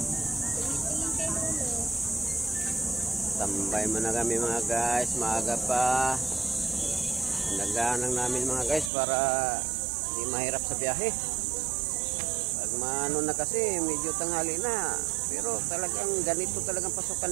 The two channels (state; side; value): drops out; left; at 8.9 s